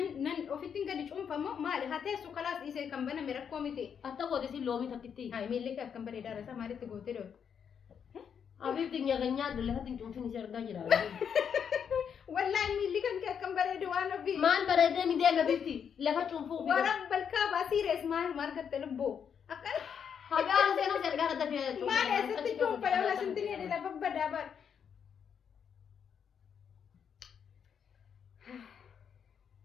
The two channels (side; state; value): right; quieter; 7.5 dB